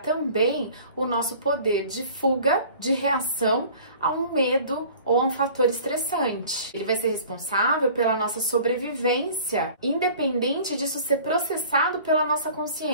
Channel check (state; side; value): inverted; both; correlation -0.47